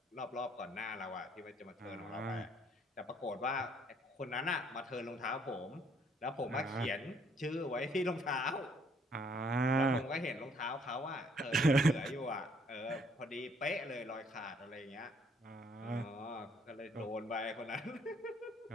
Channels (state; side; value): normal; both; correlation 0.65